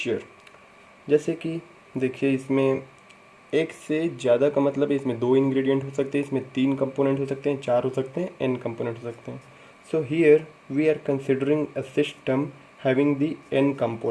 जैसे कि देखिए, इसमें एक से ज़्यादा का मतलब है इसमें दो इंग्रेडिएंट हो सकते हैं, इसमें तीन कंपोनेंट हो सकते हैं, चार हो सकते हैं, एन कंपोनेंट हो सकते हैं. So here we are considering a system having the N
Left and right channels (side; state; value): both; identical; correlation 1.00